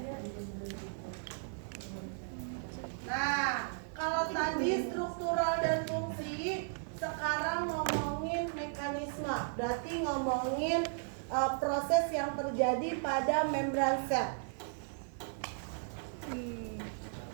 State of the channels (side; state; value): left; silent; digital silence